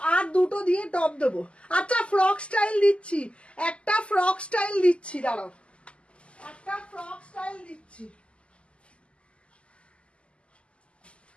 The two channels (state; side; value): late; right; 0.055 ms